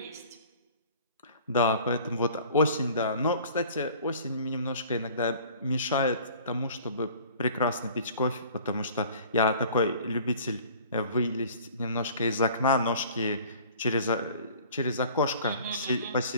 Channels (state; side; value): inverted; both; correlation -0.49